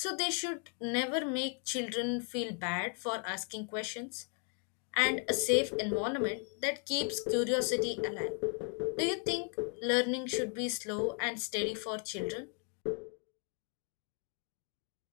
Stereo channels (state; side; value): quieter; right; 34.1 dB